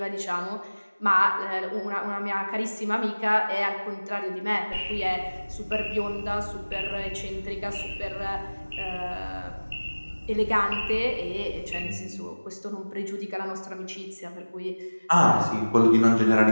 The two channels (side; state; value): both; inverted; correlation -1.00